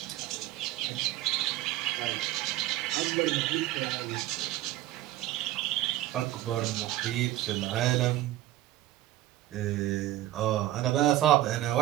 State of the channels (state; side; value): quieter; left; 14.7 dB